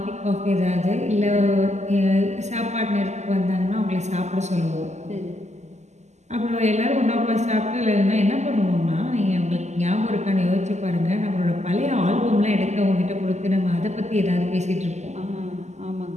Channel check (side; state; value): left; late; 0.33 ms